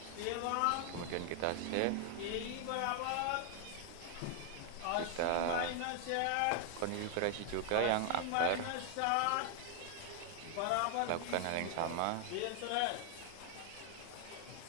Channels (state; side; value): different; both; correlation 0.00